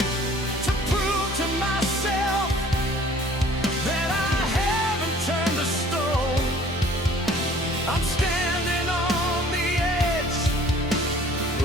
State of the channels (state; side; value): normal; both; correlation 0.52